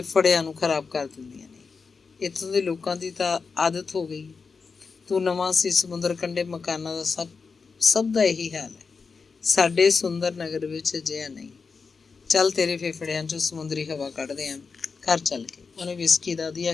ਨੂੰ ਖਰਾਬ ਕਰ ਦਿੰਦੀਆਂ ਨੇ। ਇੱਥੋਂ ਦੇ ਲੋਕਾਂ ਦੀ ਤਾਂ ਆਦਤ ਹੋ ਗਈ। ਤੂੰ ਨਵਾਂ ਸੀ, ਸਮੁੰਦਰ ਕੰਢੇ ਮਕਾਨਾਂ ਦਾ ਸਭ ਦਾ ਇਹੀ ਹਾਲ ਹੈ। ਸਾਡੇ ਸੁੰਦਰ ਨਗਰ ਵਿੱਚ ਅਜਿਹਾ ਨਹੀਂ। ਚੱਲ ਤੇਰੇ ਫੇਫੜਿਆਂ 'ਚੋਂ ਸਮੁੰਦਰੀ ਹਵਾ ਕੱਢਦੇ ਆਂ, ਘਰ ਚੱਲ ਕੇ। ਉਹਨੇ ਵਿਸਕੀ ਦਾ ਦੀਆ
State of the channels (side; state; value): right; quieter; 5.0 dB